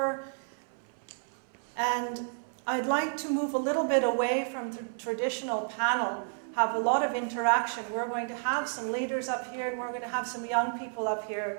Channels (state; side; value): silent; left; 57 dB below the other